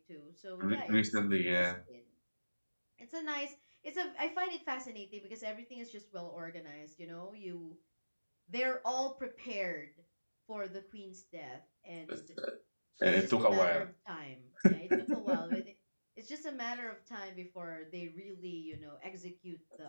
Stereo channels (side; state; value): both; inverted; correlation -1.00